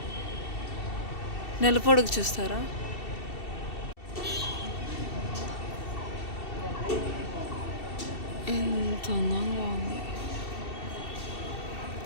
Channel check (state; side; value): late; right; 2.7 ms